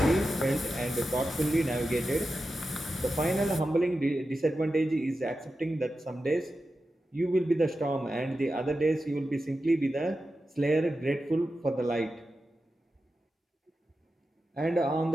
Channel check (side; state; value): both; normal; correlation 0.91